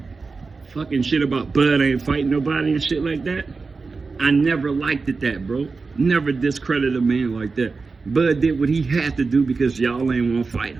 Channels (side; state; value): left; quieter; 4.3 dB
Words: fucking shit about Bud ain't fighting nobody and shit like that, I never liked it, that, bro. Never discredit a man like that. Bud did what he had to do because y'all ain't want to fight